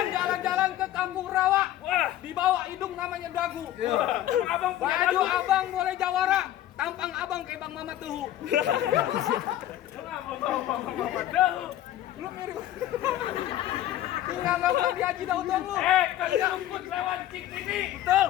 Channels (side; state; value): right; quieter; 13.1 dB